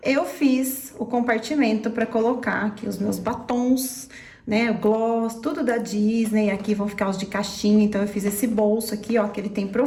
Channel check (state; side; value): identical; both; correlation 1.00